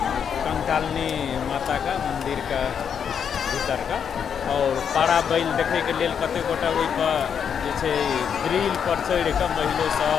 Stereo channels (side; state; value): right; quieter; 7.6 dB